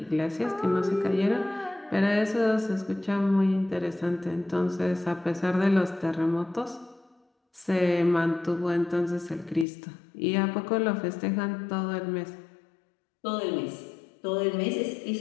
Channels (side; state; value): right; drops out; at 9.7 s